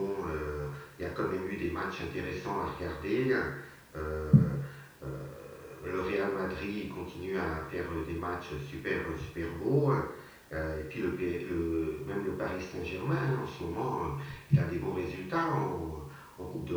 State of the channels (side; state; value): both; identical; correlation 1.00